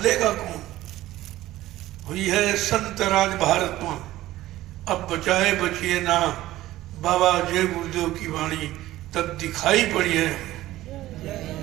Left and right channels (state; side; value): quieter; left; 15.6 dB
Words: कौन? हुई है संत राज भारत में, अब बचाए बचिए ना। बाबा जय गुरुदेव की वाणी तब दिखाई पड़ी है।